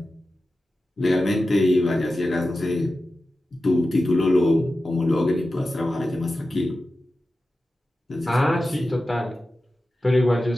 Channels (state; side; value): normal; both; correlation 0.93